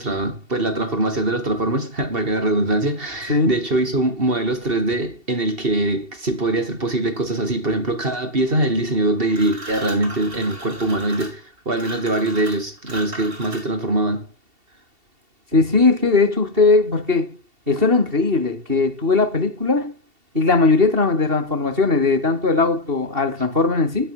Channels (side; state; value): left; late; 2.7 ms